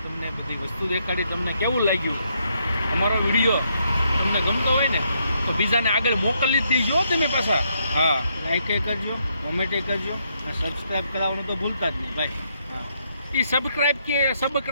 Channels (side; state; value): both; inverted; correlation -0.76